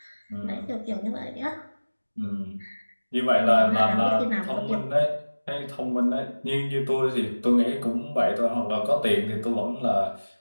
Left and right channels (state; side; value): inverted; both; correlation -1.00